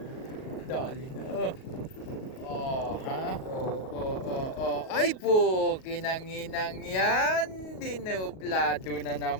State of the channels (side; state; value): right; late; 38 ms